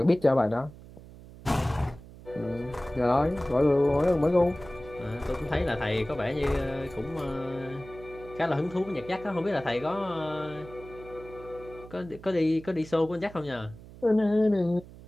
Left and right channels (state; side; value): noise; right; hum, 18 dB below the sound